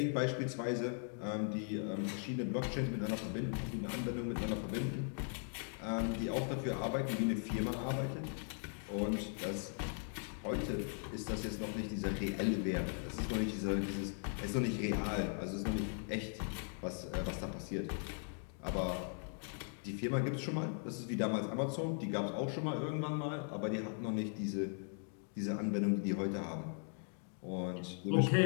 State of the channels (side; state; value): right; silent; 52 dB below the other